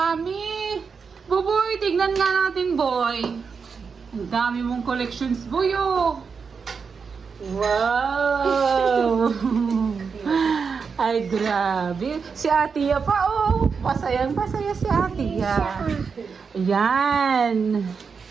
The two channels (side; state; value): left; quieter; 5.6 dB